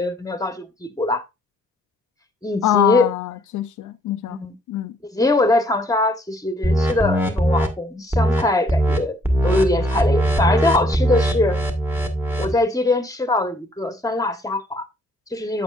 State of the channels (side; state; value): both; normal; correlation 0.65